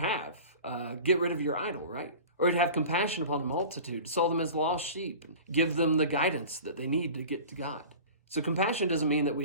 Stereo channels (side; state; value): both; inverted; correlation -0.37